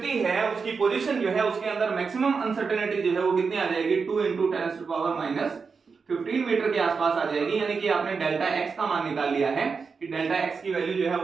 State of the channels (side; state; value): left; quieter; 5.2 dB